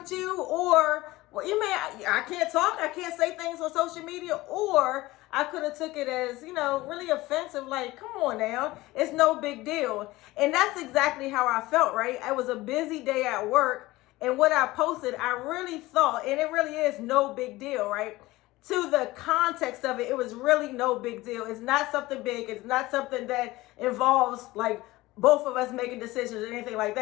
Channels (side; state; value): right; quieter; 19.0 dB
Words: you, or I can't talk, I can't say things on social media, or I could have took it as, really offensive, like, come on now, it's no big deal. And that's exactly how I felt, right? It was a busy day at work, and what I posted, I really thought, and it really is no big deal, right? To the context of it, it was really no big deal. It's not something big. It's not something that involves like both of us making decisions or anything like